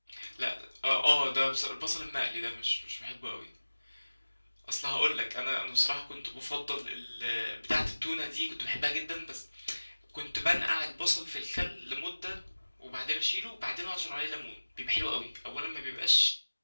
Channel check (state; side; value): inverted; both; correlation -1.00